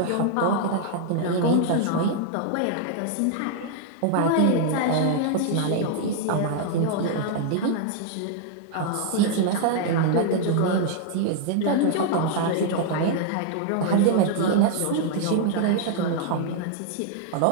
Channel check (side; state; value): both; different; correlation 0.00